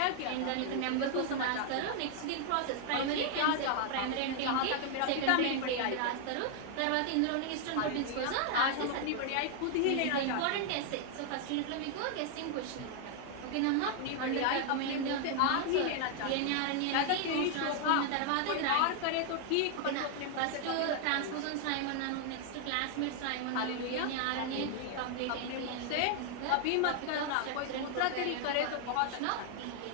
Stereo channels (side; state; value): both; different; correlation 0.00